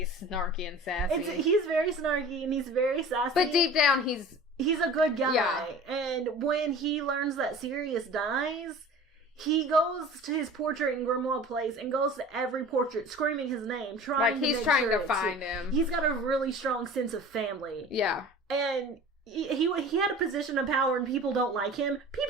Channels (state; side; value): normal; both; correlation 0.40